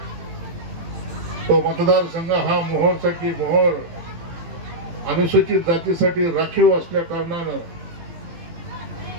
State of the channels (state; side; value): late; left; 18 ms